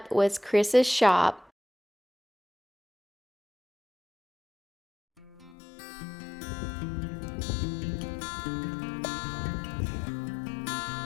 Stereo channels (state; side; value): drops out; right; at 5.6 s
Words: was Chris's shop.